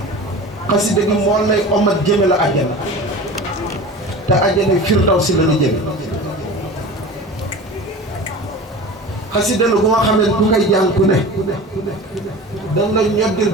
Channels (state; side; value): normal; both; correlation 0.35